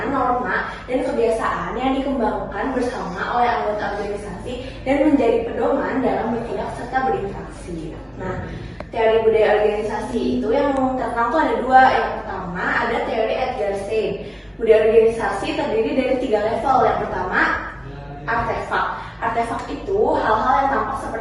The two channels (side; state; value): both; identical; correlation 1.00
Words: norma, dan kebiasaan yang dikembangkan bersama oleh anggota organisasi dan menjadi pedoman dalam bertindak serta berinteraksi. Nah, teori budaya organisasi itu yang terkenal tuh ada dua. Yang pertama ada teori Edgar Schein. Budaya organisasi terdiri dari 3 level. Yang pertama artefak. Artefak itu hal-hal yang tampak